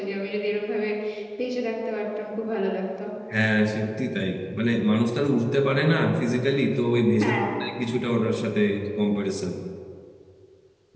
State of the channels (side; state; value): both; identical; correlation 1.00